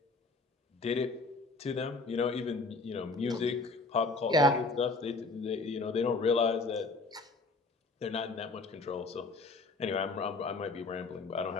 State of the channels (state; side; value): quieter; right; 3.6 dB